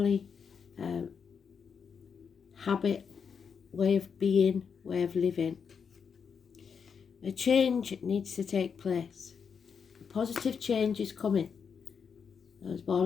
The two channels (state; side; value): quieter; right; 6.5 dB